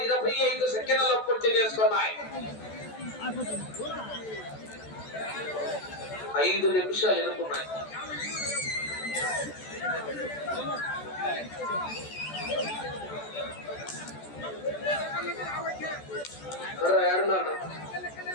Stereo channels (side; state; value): right; late; 14 ms